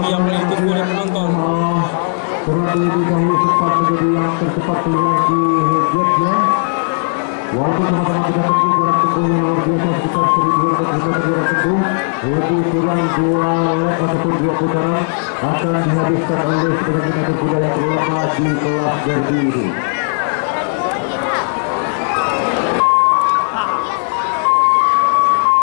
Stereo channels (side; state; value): right; silent; 67 dB below the other